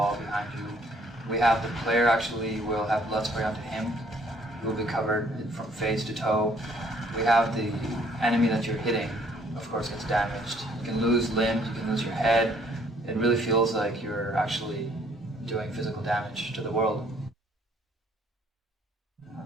behind you. We have the player actually will have blood spray onto him. He will be covered from face to toe. We have the enemy that you're hitting, of course, gets damaged. You can lose limbs, you can lose your head. It really feels like you're actually doing physical damage to the world.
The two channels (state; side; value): normal; both; correlation 0.63